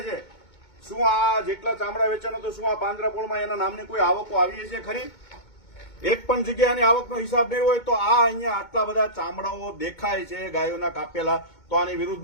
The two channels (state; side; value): late; right; 2.2 ms